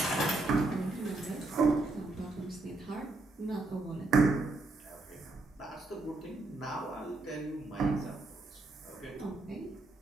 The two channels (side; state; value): left; quieter; 3.1 dB